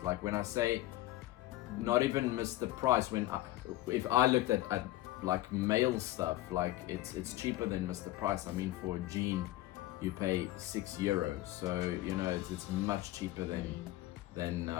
Like when I say not even miss the price, if I looked at like male stuff, like it's cheaper than Mr. Price. I mean, for a jean you pay €6, so you know it's much cheaper than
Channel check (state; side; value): quieter; right; 16.2 dB